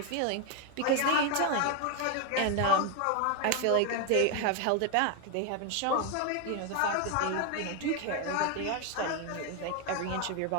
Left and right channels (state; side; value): different; both; correlation 0.01